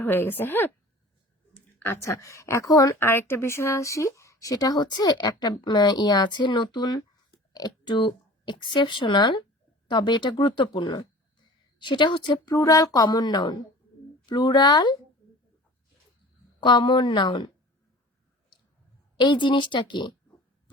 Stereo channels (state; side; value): normal; both; correlation 0.43